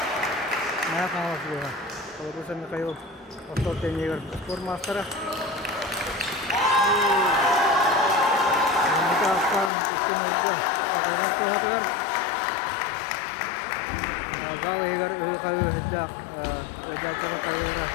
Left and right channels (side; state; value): right; drops out; at 9.7 s